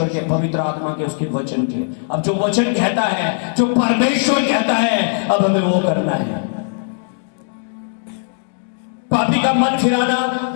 के, पवित्र आत्मा के, उसके वचन के। अब जो वचन कहता है, जो परमेश्वर कहता है, अब हमें वो करना है। पापी का मन फिराना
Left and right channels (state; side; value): silent; right; digital silence